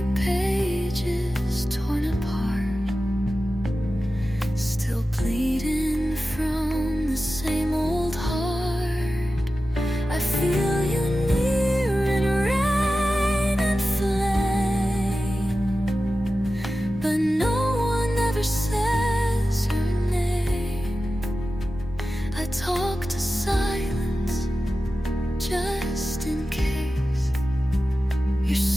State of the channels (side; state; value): both; normal; correlation 0.94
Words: pages torn apart, still bleeding from the same old heart. I feel you near in rain and flame, but no one ever says her name. I talk to silence just in case you're